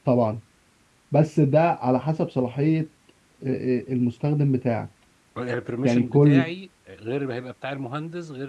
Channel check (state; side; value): identical; both; correlation 1.00